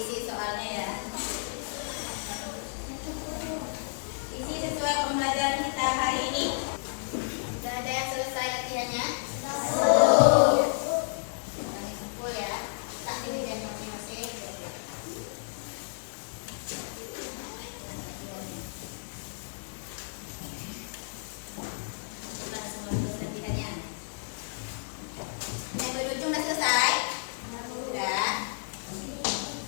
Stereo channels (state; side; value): silent; right; digital silence